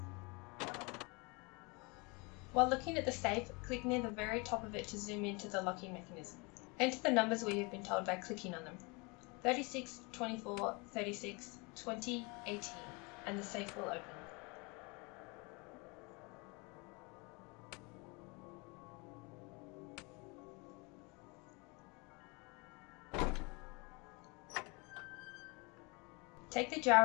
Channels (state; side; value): quieter; right; 28.8 dB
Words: While looking at the safe, click near the very top of it to zoom into the locking mechanism. Enter the numbers where you've been told by clicking on them. 36, 24, 36, 20, 18, and the safe will open. Take the